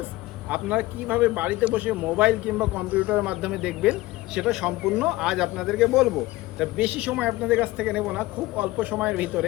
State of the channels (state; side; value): quieter; right; 18.8 dB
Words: আপনারা কিভাবে বাড়িতে বসে মোবাইল কিংবা কম্পিউটারের মাধ্যমে দেখবেন সেটা সম্পূর্ণ আজ আপনাদেরকে বলবো। তা বেশি সময় আপনাদের কাছ থেকে নেব না, খুব অল্প সময়ের ভিতরে